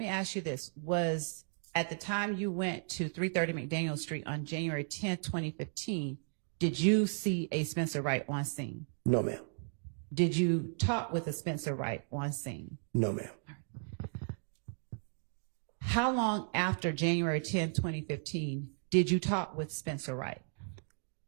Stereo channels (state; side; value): silent; left; digital silence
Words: ask you this. Was at the time you went to 330 McDaniel Street on January 10th, 2015, did you see a Spencer Wright on scene? No, ma'am. Did you talk with a Spencer Wright on scene? No, ma'am. How long after January 10th, 2015, did you talk with Spencer Wright?